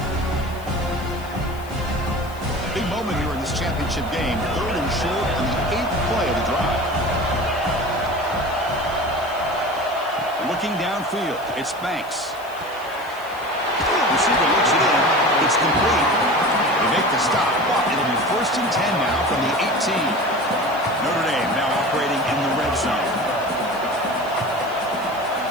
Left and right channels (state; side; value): noise; left; hiss, 22 dB below the sound